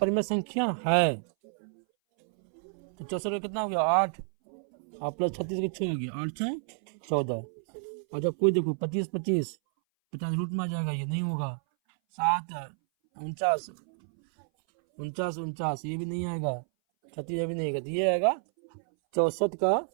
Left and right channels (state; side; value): silent; left; 58 dB below the other